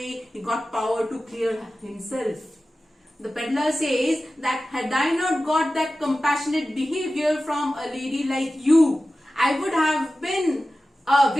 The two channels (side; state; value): both; normal; correlation 0.95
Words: he got power to clear himself. The peddler says that had I not got that compassionate behavior from a lady like you, I would have been a